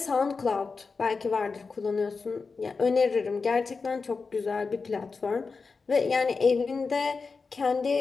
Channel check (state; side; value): quieter; right; 4.6 dB